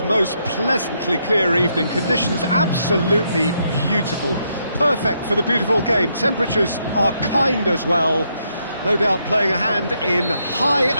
most pleasantly clear evening. Conditions absolutely beautiful. Perfect for the beautiful game. Temperatures are kind as well. No doubt playing a hand in high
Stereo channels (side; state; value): both; inverted; correlation -0.77